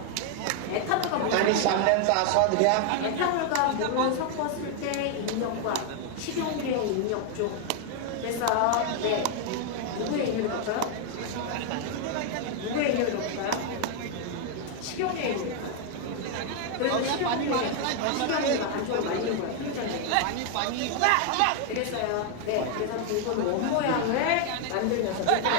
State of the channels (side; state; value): both; different; correlation 0.00